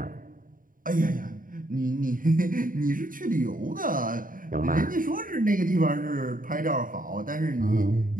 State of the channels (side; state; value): left; late; 0.40 ms